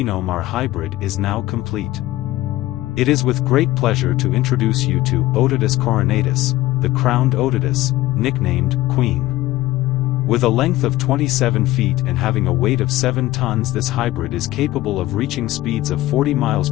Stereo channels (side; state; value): right; quieter; 16.6 dB